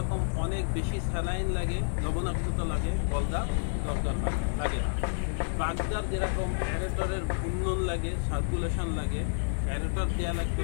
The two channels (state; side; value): silent; right; digital silence